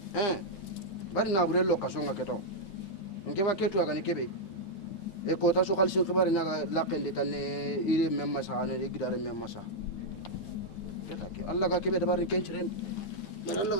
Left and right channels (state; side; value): late; right; 9.3 ms